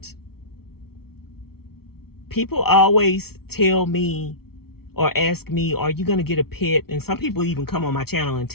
people always tell me or ask me, are you going to get a pet? And some people even come on my channel and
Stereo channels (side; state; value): right; late; 0.95 ms